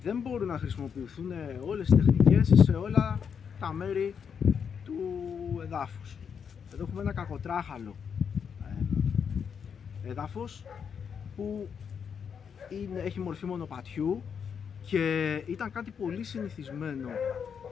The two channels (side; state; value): right; quieter; 7.0 dB